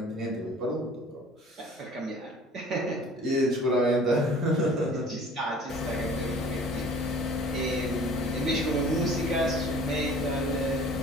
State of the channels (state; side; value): normal; both; correlation 0.49